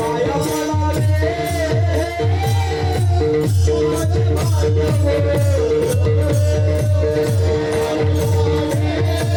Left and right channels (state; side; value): identical; both; correlation 1.00